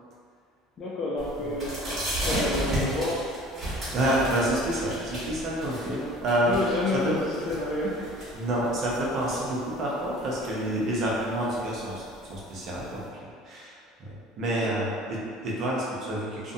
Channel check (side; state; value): both; normal; correlation 0.47